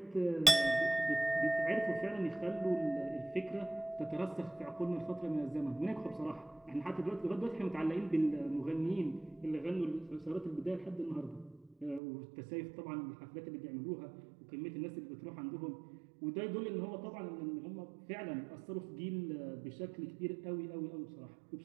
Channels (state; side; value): drops out; left; at 12.0 s